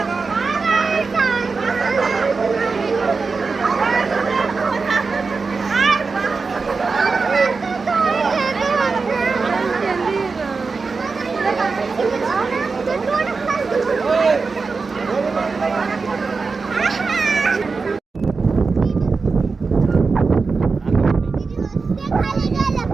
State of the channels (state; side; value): quieter; left; 4.5 dB